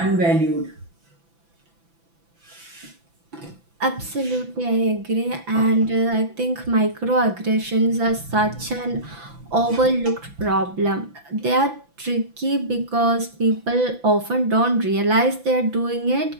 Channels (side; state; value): left; late; 5.9 ms